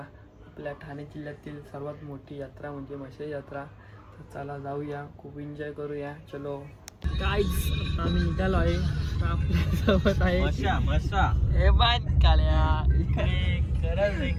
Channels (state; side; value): identical; both; correlation 1.00